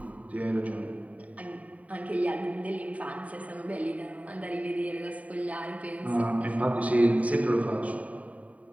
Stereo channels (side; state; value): left; late; 0.069 ms